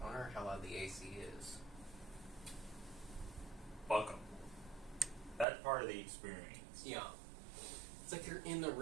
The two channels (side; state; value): left; drops out; at 5.5 s